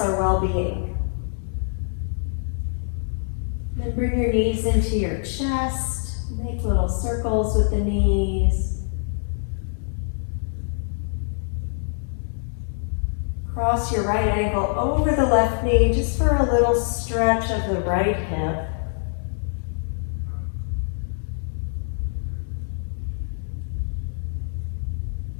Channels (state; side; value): silent; right; 62 dB below the other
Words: well-being. Then bring your knees into your chest. Make little circles with the knees. Cross your right ankle over the left knee just for a little stretch of the right hip.